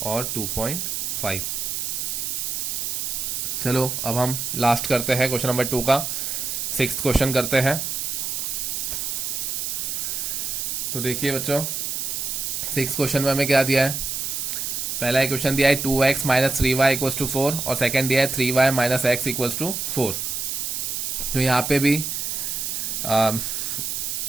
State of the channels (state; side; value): noise; right; hiss, 2 dB below the sound